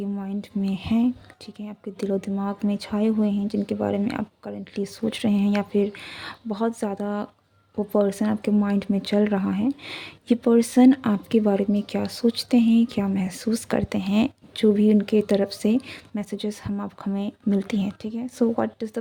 माइंड में है, ठीक है, आपके दिलो दिमाग में छाए हुए हैं, जिनके बारे में आप करंटली सोच रहे हैं या फिर बहुत ज़्यादा वो पर्सन आपके माइंड में चल रहा है, ये पर्सन आपके बारे में क्या सोचते हैं, क्या महसूस करते हैं, जो भी उनके तरफ से मैसेजेस हमें मिलती हैं, ठीक है। So what does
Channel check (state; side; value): identical; both; correlation 1.00